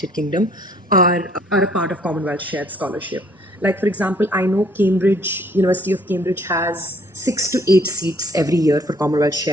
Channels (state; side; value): normal; both; correlation 0.61